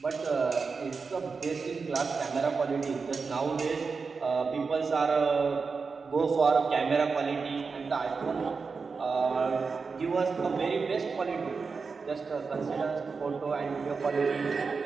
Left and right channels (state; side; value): quieter; left; 4.9 dB